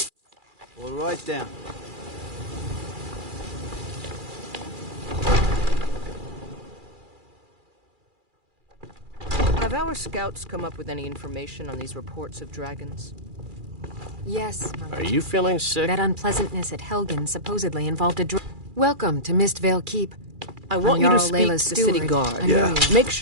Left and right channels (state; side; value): late; left; 2.4 ms